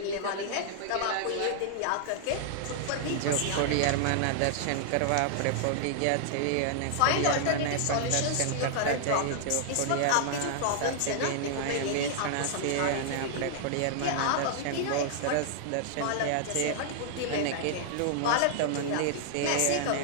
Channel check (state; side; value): different; both; correlation -0.01